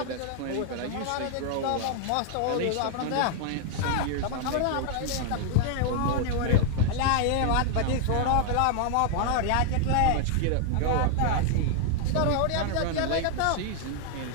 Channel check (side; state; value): both; different; correlation 0.00